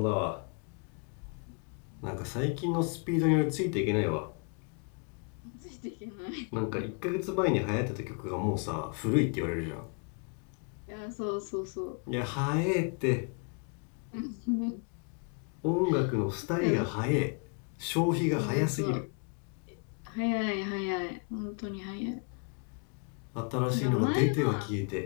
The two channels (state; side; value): quieter; right; 39.7 dB